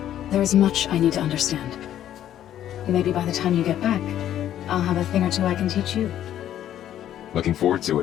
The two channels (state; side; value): quieter; right; 11.4 dB